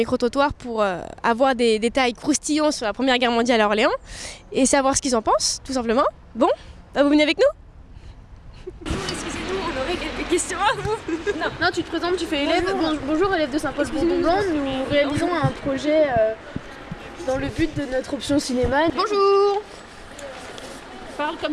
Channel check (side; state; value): both; identical; correlation 1.00